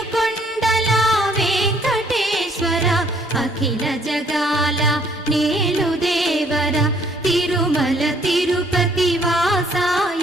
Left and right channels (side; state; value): both; normal; correlation 0.63